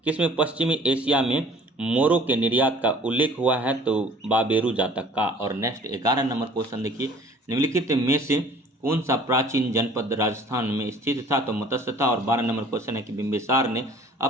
किसमें पश्चिमी एशिया में मोरों के निर्यात का उल्लेख हुआ है? तो बाबेरू जातक का। और नेक्स्ट 11 नंबर क्वेश्चन देखिए, निम्नलिखित में से कौन सा प्राचीन जनपद राजस्थान में स्थित था? तो मत्स्य था। और 12 नंबर क्वेश्चन है कि बिंबिसार ने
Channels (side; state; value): both; normal; correlation 0.51